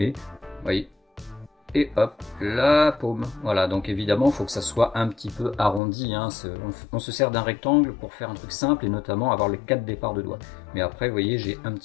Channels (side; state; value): right; drops out; at 5.8 s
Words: vous voyez, et hop, la paume. Voilà, donc évidemment, il faut que ça soit un petit peu arrondi, hein. On se sert d'un rectangle pour faire un truc simple, et notamment avoir les 4 départs de doigts. Mais après, vous voyez, j'ai un